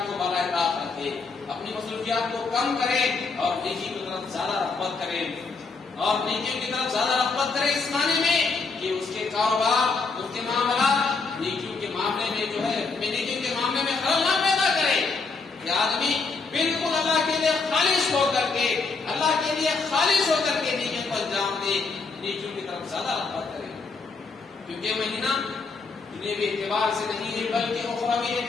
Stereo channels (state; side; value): quieter; right; 4.3 dB